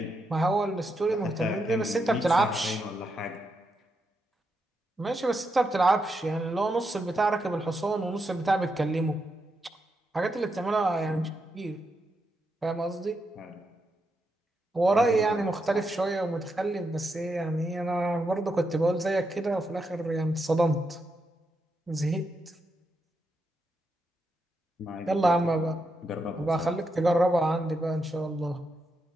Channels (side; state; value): both; normal; correlation 0.83